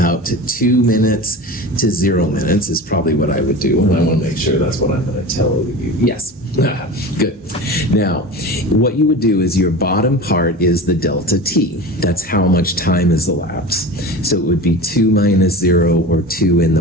to 2 minutes to 0 minutes is probably what I would do, and I want to make sure that's what I'm going to tell you. Yes, good. Now, what you would do is your bottom part is the delta T. That's how much time has elapsed. So it would be 2 minus 0 or 2 in the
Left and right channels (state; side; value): normal; both; correlation 0.31